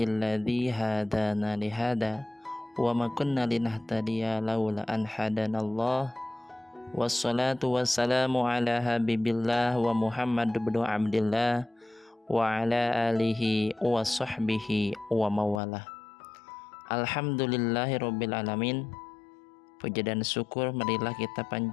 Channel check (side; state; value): right; drops out; at 15.6 s